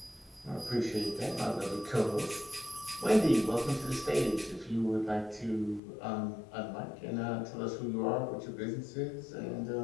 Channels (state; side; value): drops out; right; at 5.8 s